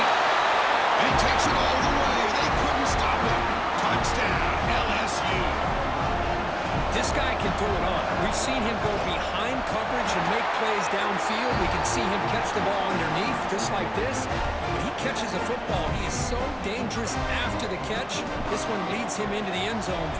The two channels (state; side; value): identical; both; correlation 1.00